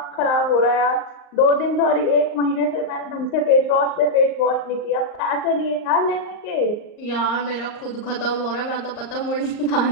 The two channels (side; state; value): right; late; 38 ms